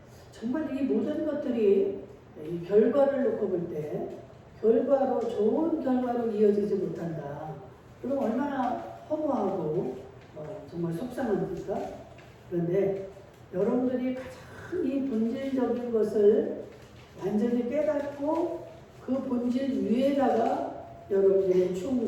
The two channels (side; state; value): both; identical; correlation 1.00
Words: 정말 이 모든 것들이 이 결과를 놓고 볼 때 결과로 좋은 결과로 이어지지 못한다. 그럼 얼마나 허무하고 정말 속상합니까? 그런데 여러분들이 가장 이 본질적인 것을 완전히 깨닫고 그 본질 위에다가 여러분들의